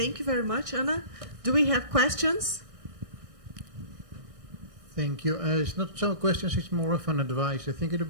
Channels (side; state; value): left; late; 1.6 ms